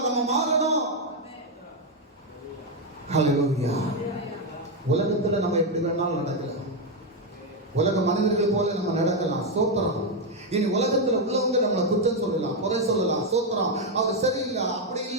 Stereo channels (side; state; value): both; normal; correlation 0.03